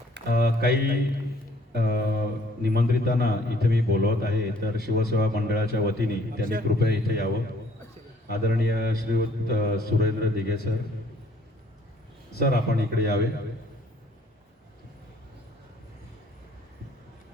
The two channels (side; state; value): both; normal; correlation 0.60